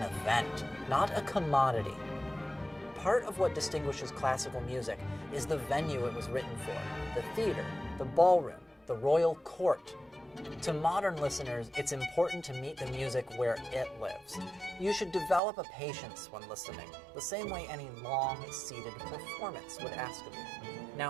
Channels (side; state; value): left; drops out; at 15.4 s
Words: event, not a commodity. Part of what distinguishes classical music is the venue it was written for, the theater, the ballroom, the royal court. To modern listeners, it's important to meet the music where it lives. You should develop a patience when listening, the same way any long, seated performance would ask of you.